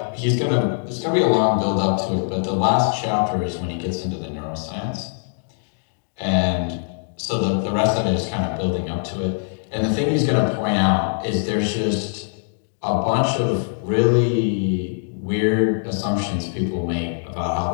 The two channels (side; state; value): right; silent; digital silence